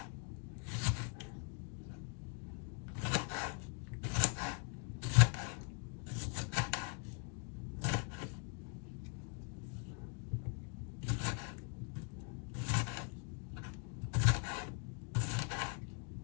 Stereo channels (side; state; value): right; quieter; 38.1 dB